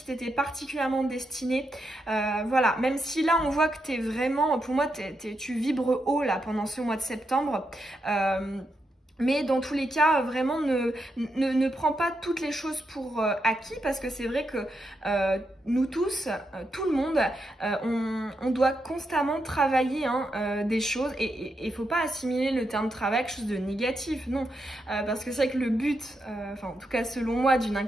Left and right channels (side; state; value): both; normal; correlation 0.83